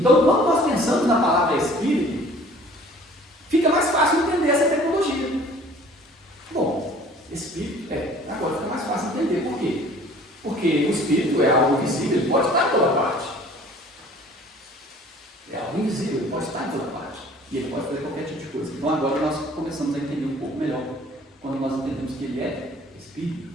quando nós pensamos na palavra Espírito, fica mais fácil entender essa tecnologia. Bom, Espírito agora fica mais fácil entender. Por quê? Porque o Espírito é algo visível, ele pode estar em toda parte. É algo invisível, ele pode estar em toda parte. E ele pode fazer qualquer tipo de coisa. Então agora nós começamos a entender um pouco melhor quando nós entendemos que ele é Espírito.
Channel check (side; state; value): both; normal; correlation 0.51